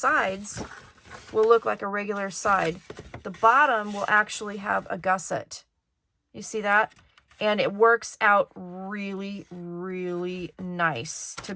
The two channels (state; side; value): identical; both; correlation 1.00